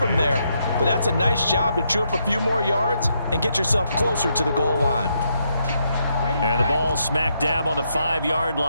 there, but that's a nice job to chew up a few more yards and get yourself closer to the goal line. And the ball smack dab on the 5-yard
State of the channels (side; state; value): both; inverted; correlation -0.78